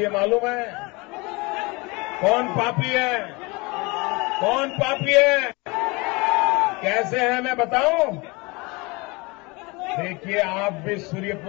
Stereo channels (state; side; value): quieter; right; 26.1 dB